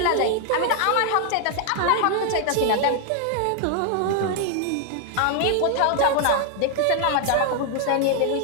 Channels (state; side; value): different; both; correlation 0.00